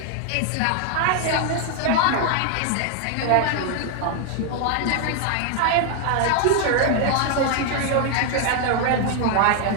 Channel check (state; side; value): different; both; correlation 0.00